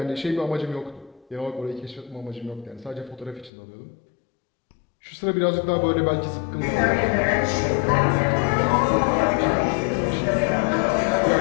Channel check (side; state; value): right; drops out; at 3.5 s